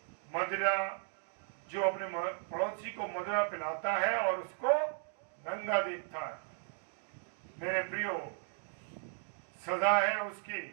मदिरा, जो अपने पड़ोसी को मदिरा पिलाता है और उसको नंगा देखता है। मेरे प्रियो, सजा है उसकी।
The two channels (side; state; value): left; silent; 54 dB below the other